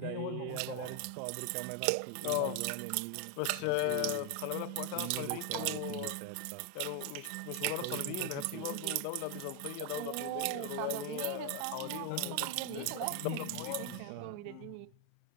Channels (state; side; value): different; both; correlation 0.01